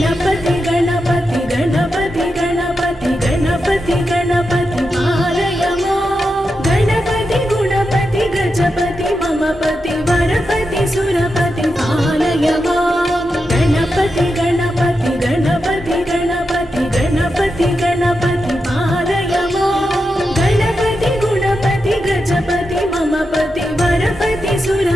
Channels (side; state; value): both; normal; correlation 0.88